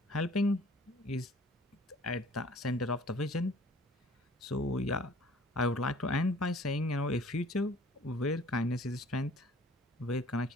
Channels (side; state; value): both; normal; correlation 0.53